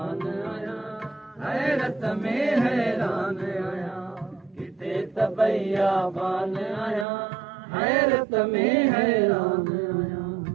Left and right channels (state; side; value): drops out; left; at 7.1 s